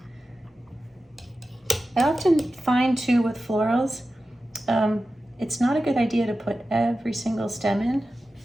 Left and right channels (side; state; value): both; normal; correlation 0.93